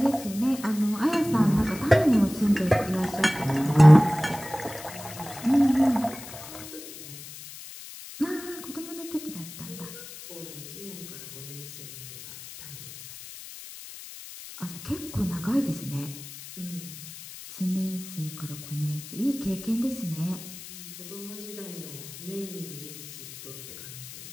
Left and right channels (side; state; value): left; noise; hiss, 14 dB below the sound